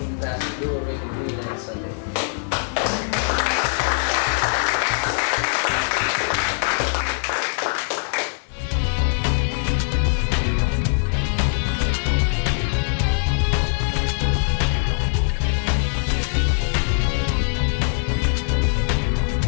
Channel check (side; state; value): right; silent; 64 dB below the other